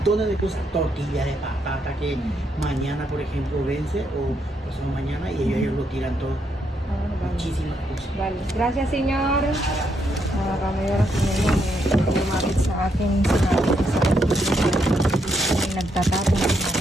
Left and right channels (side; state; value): both; normal; correlation 0.77